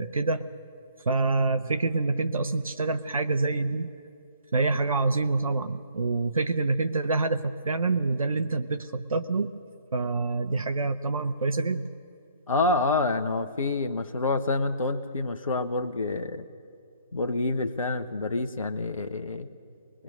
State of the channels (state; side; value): inverted; both; correlation -0.63